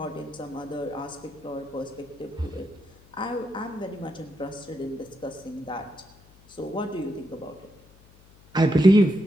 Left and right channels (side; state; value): left; noise; hum, 26 dB below the sound